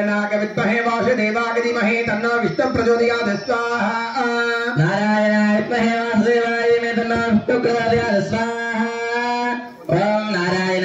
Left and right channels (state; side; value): identical; both; correlation 1.00